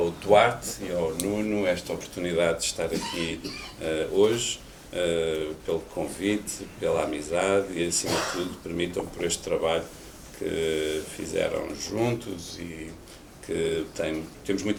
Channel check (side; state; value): both; identical; correlation 1.00